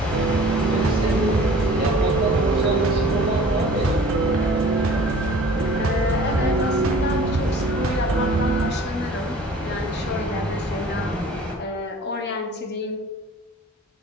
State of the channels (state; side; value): normal; both; correlation 0.47